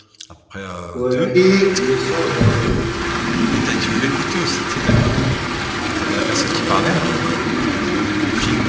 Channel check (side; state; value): both; identical; correlation 1.00